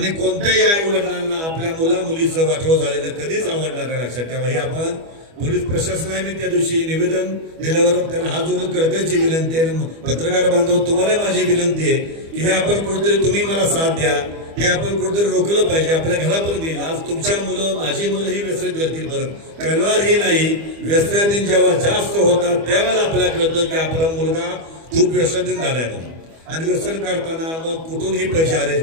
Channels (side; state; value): left; late; 25 ms